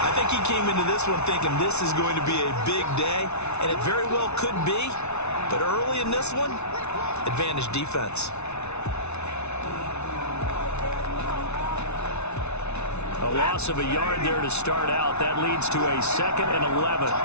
I think he came into this one thinking this is going to be a big day, and it very well could be. But early in this one, advantage defense. A loss of a yard there to start out. That leads to a 2nd and 11.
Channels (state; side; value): late; right; 0.81 ms